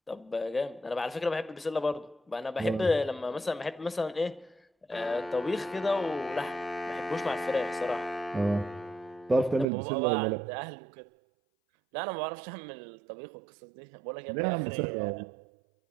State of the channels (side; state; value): left; drops out; at 9.7 s